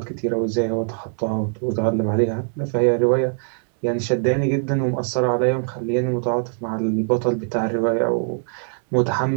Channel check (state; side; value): silent; left; 64 dB below the other